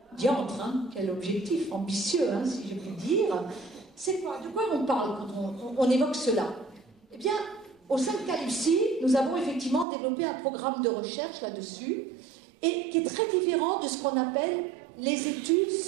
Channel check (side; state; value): left; drops out; at 9.9 s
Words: Diantre, hein, quel objectif ambitieux, hein, si je puis dire. C'est quoi? De quoi on parle quand on évoque cela? Eh bien, au sein de Caluci, nous avons effectivement développé un programme de recherche là-dessus, et qui est très différent de ce qu'on appelle les études